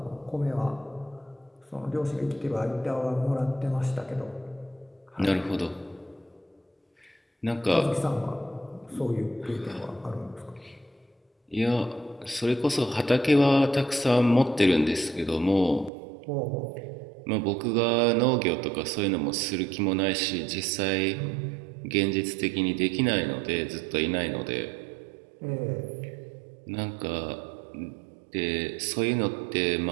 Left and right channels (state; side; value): drops out; left; at 15.9 s